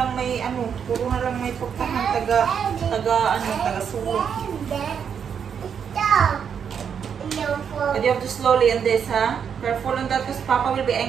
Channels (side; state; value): left; quieter; 7.4 dB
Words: may portahan, taga sulok. And you have to slowly on this, ha? Careful on that because Papa will be